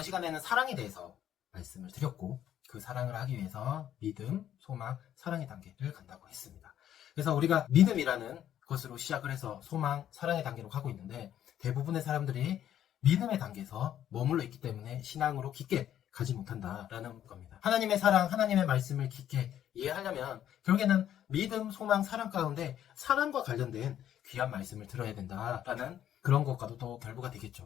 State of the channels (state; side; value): quieter; right; 10.8 dB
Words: 시간에는 사랑에 대해서 말씀을 드렸고 그 사랑을 하기 위해서 믿음, 소망, 사랑의 단계를 간다고 했습니다. 그래서 우리가 믿음이라는 것으로 시작을 해서 소망, 사랑의 단계로 가고 있는데 대부분의 사람들이 믿음의 단계에서 머물러 있기 때문에 신앙으로 깊게 가지 못한다라는 겁니다. 하나님의 사랑, 하나님의 말씀을 깊게 이해하려면 결국에는 믿음, 소망, 사랑 가운데 사랑과 관련된 귀한 말씀을 들어야 된다라는 그런 것과도 또 결부가